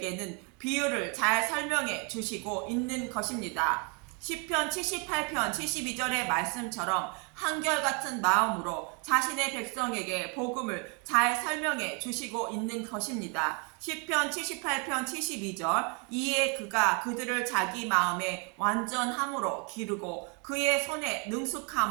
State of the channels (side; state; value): left; quieter; 34.4 dB